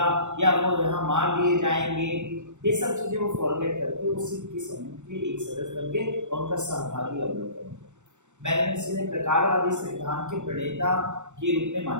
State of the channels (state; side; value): late; left; 0.84 ms